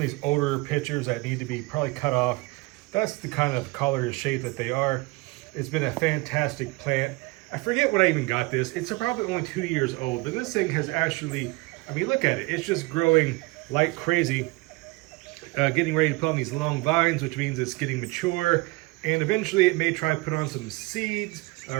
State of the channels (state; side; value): quieter; left; 23.9 dB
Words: older pitchers that need to be probably cut off. That's the kind of color and shape that they are. It's been a fantastic plant. I forget when I even got this. It's probably only 2 years old, but this thing has actually, I mean, look at it. It's just growing like crazy, getting ready to put on these long vines, which means it's getting mature. And eventually it may try to put on some seeds